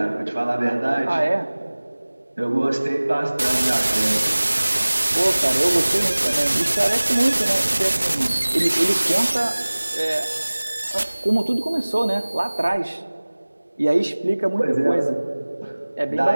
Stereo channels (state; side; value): inverted; both; correlation -1.00